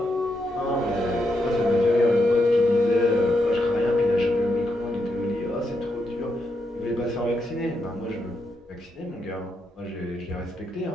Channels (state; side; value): normal; both; correlation 0.81